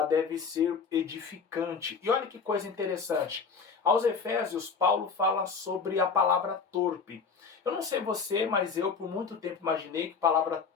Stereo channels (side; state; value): right; quieter; 5.4 dB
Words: deve ser edificante. E olha que coisa interessante. Aos Efésios, Paulo fala sobre a palavra torpe. Eu não sei você, mas eu por muito tempo imaginei que palavra